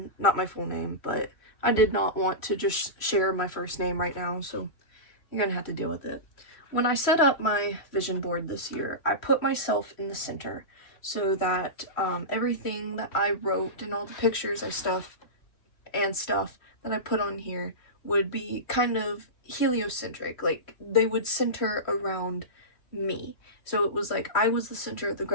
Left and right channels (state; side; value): late; right; 3.1 ms